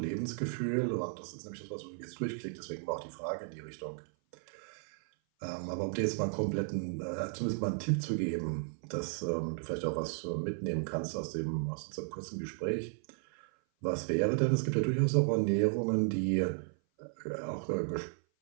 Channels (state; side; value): silent; left; 55 dB below the other